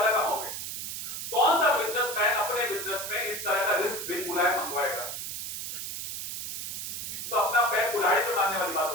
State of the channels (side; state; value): right; noise; hiss, 6 dB below the sound